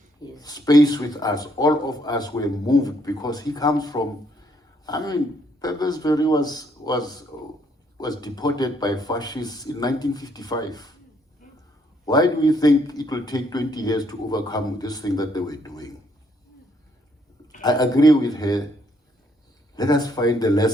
space with us, all of us were moved, because he comes from, Perversberry was deported by fascists in 1955. Why do we think it will take 20 years to overcome this thing that they were doing? I agree with her. Let us find the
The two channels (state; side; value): normal; both; correlation 0.70